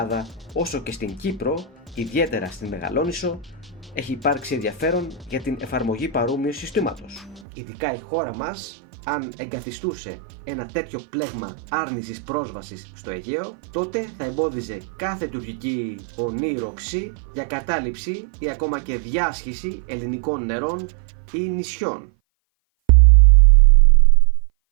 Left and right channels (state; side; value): drops out; left; at 7.5 s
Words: όσο και στην Κύπρο, ιδιαίτερα στην Μεγαλόνισσο, έχει υπάρξει ενδιαφέρον για την εφαρμογή παρόμοιου συστήματος. Ειδικά η χώρα μας, αν εγκαθιστούσε ένα τέτοιο πλέγμα άρνησης πρόσβασης στο Αιγαίο, τότε θα εμπόδιζε κάθε τουρκική ονείροξη για κατάληψη ή ακόμα και διάσχιση ελληνικών νερών ή νησιών.